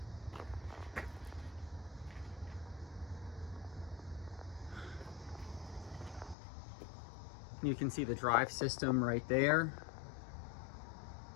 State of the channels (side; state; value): right; drops out; at 6.4 s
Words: You can see the drive system right there.